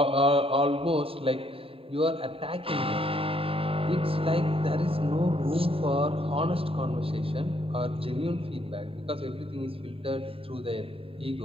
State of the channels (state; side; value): late; left; 0.27 ms